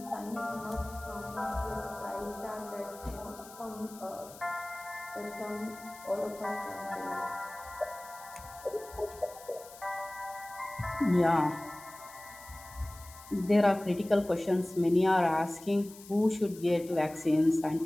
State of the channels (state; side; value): noise; left; hiss, 18 dB below the sound